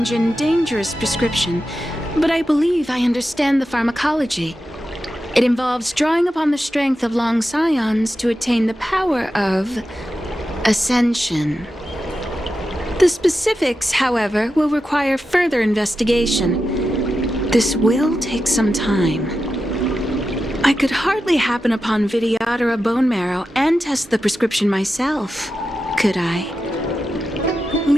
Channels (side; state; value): both; normal; correlation 0.90